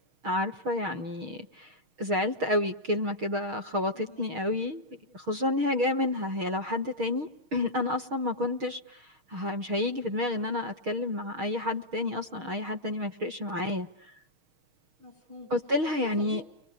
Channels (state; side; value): late; left; 6.4 ms